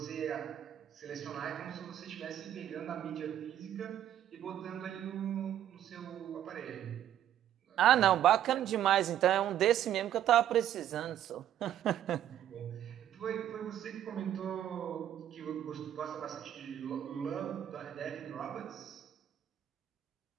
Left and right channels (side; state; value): left; quieter; 11.2 dB